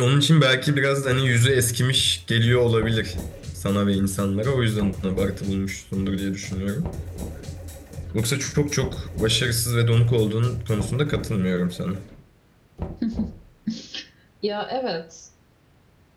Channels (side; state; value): both; identical; correlation 1.00